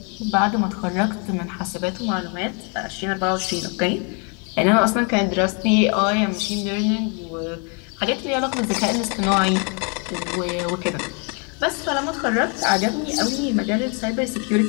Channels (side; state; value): right; quieter; 36.2 dB